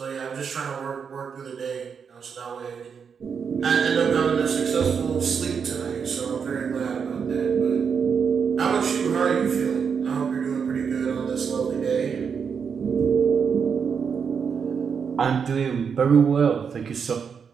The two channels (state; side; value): quieter; left; 6.5 dB